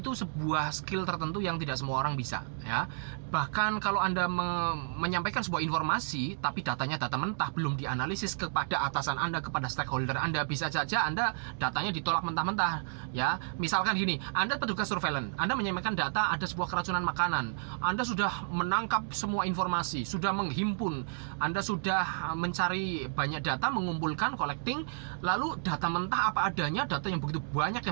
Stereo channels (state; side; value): silent; left; digital silence